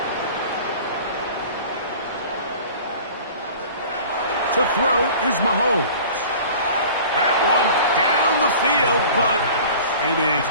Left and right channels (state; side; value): inverted; both; correlation -0.43